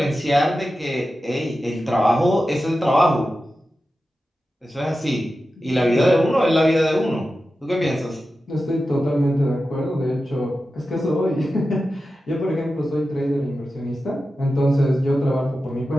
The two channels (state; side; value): normal; both; correlation 0.92